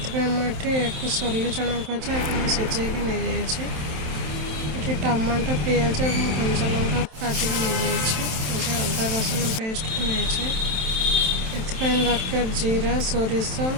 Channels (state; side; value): late; left; 27 ms